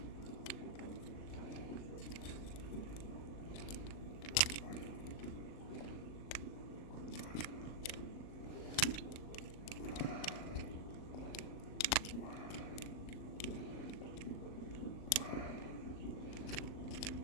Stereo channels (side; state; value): right; late; 38 ms